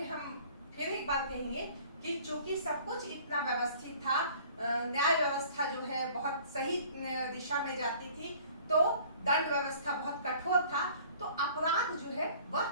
हम फिर एक बार कहेंगे कि चूंकि सब कुछ इतना व्यवस्थित था, न्याय व्यवस्था जो है बहुत सही दिशा में जाती थी, तो दंड व्यवस्था बहुत कठोर था, तो अपराध जो है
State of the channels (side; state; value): both; inverted; correlation -0.51